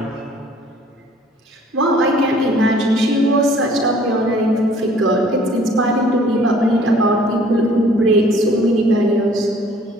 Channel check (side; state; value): both; normal; correlation 0.55